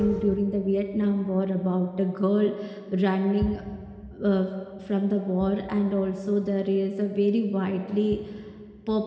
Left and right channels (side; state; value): both; identical; correlation 1.00